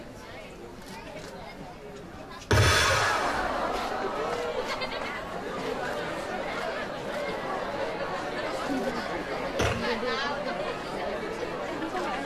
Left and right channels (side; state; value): both; identical; correlation 1.00